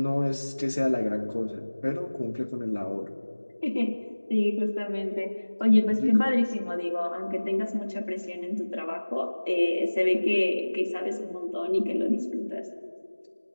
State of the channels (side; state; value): both; inverted; correlation -1.00